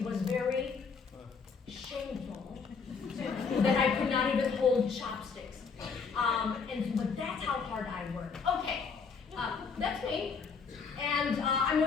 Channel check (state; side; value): quieter; right; 5.5 dB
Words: was very shameful that I could not even hold chopsticks. But that's how hard I work. Okay, that's me. And I